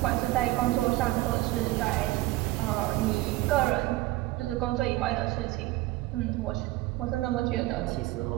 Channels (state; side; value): quieter; left; 18.2 dB